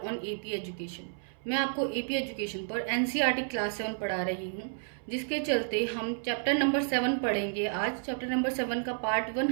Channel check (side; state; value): left; silent; 56 dB below the other